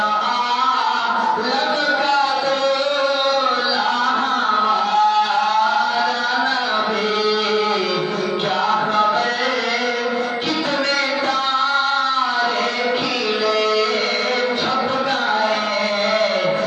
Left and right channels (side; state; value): both; identical; correlation 1.00